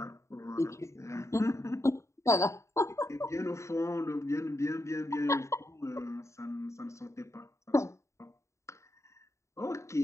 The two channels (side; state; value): right; late; 0.14 ms